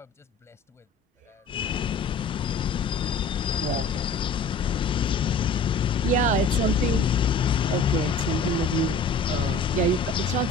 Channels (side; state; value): right; quieter; 3.6 dB